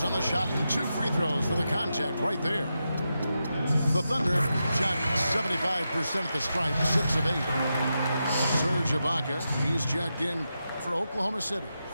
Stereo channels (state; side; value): inverted; both; correlation -0.88